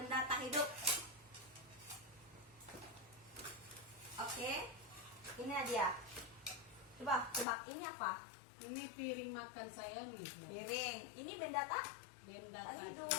tak hidup. Oke. Ini dia. Coba tebak ini apa? Ini piring makan saya nih Bu. Piring. Ini benda tak Benda tak tak hidup.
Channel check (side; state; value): right; drops out; at 7.5 s